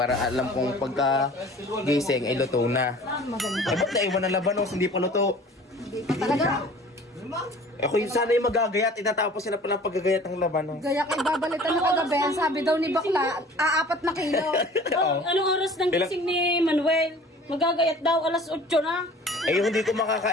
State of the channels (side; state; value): both; normal; correlation 0.46